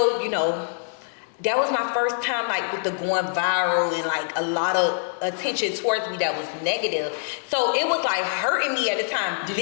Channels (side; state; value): right; silent; digital silence